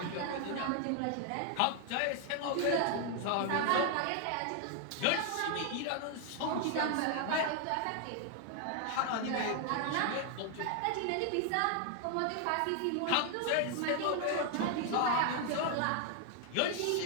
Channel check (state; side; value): different; both; correlation 0.00